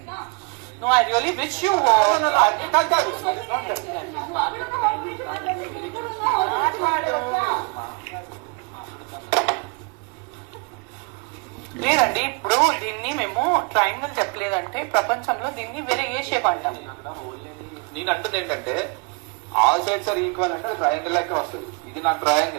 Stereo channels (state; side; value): quieter; left; 33.3 dB